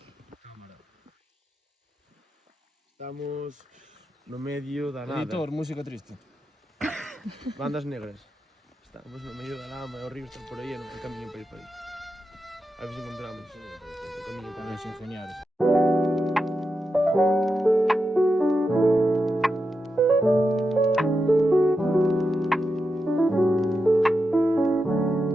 Estamos no medio da nada. Editor, música triste. Bandas negras. Estamos no medio da lama e o río está por aí e non hai camiño para ir para aí. A ver se encontramos o camiño para Para os ingenieros.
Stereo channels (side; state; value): both; normal; correlation 0.87